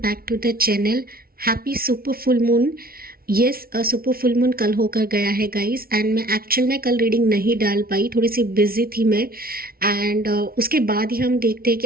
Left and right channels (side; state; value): left; late; 0.44 ms